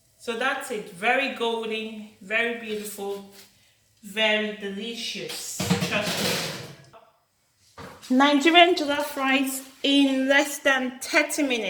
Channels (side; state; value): both; identical; correlation 1.00